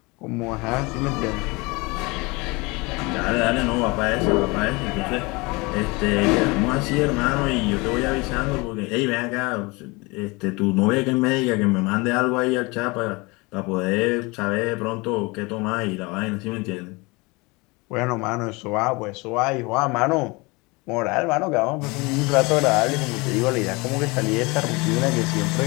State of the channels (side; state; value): right; quieter; 25.6 dB